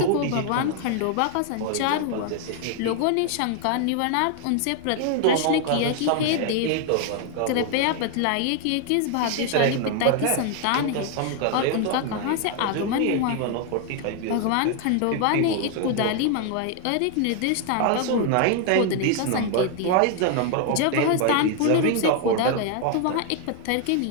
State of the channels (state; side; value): different; both; correlation 0.00